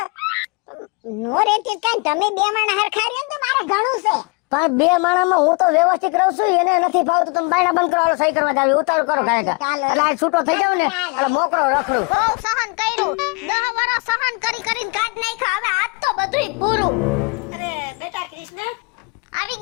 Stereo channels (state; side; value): quieter; right; 30.5 dB